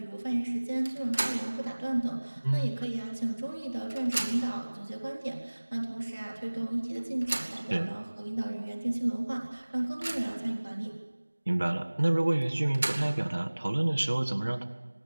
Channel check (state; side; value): inverted; both; correlation -1.00